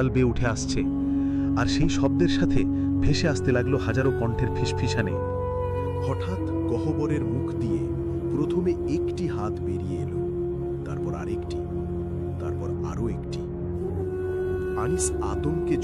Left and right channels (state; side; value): identical; both; correlation 1.00